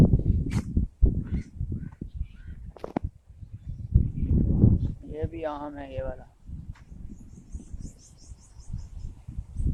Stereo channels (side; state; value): both; identical; correlation 1.00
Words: ये भी आम है ये वाला।